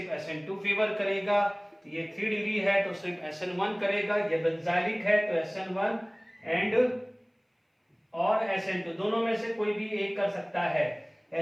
SN2 फेवर करेगा, ये 3 डिग्री है तो सिर्फ SN1 करेगा, ये बेंजाइलिक है तो SN1 एंड और SN2 दोनों में से कोई भी एक कर सकता है,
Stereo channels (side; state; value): both; identical; correlation 1.00